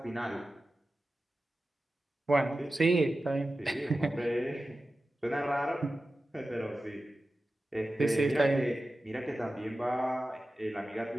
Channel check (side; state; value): both; normal; correlation 0.94